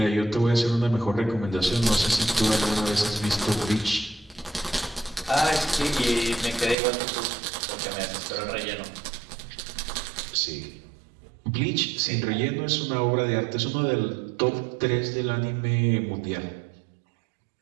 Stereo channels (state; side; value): drops out; left; at 6.8 s